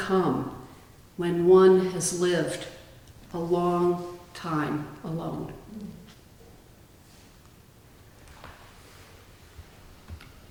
when one has lived a long time alone.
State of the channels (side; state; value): both; identical; correlation 1.00